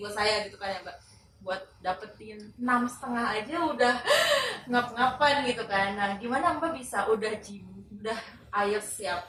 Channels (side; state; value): both; identical; correlation 1.00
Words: saya gitu kan ya Mbak. Buat dapetin 6,5 aja udah ngap-ngapan gitu kan. Nah, gimana Mbak bisa udah IELTS